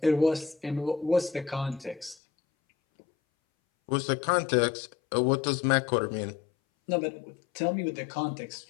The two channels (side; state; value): right; drops out; at 2.1 s